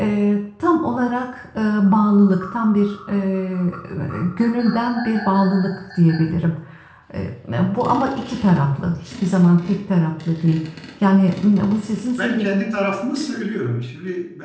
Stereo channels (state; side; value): identical; both; correlation 1.00